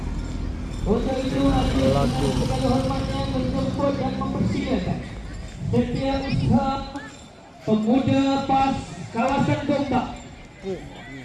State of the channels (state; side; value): identical; both; correlation 1.00